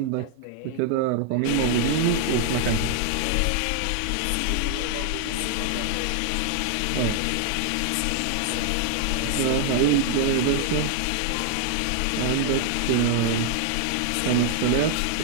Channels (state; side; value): different; both; correlation 0.00